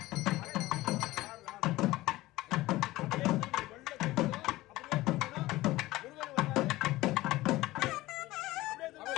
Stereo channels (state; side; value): quieter; right; 18.1 dB